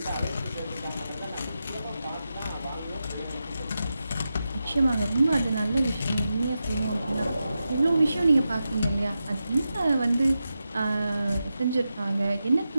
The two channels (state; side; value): inverted; both; correlation -0.90